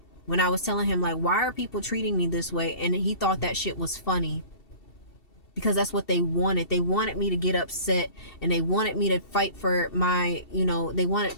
when I was telling him, like, why are people treating me this way? And he thought that shit was funny, because that's what they wanted. They wanted me to get upset, and they wanted me to fight for my, they wanted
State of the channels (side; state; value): right; late; 2.7 ms